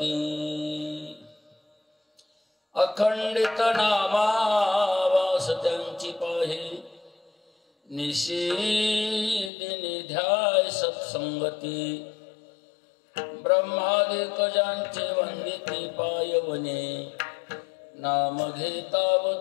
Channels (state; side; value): drops out; right; at 9.5 s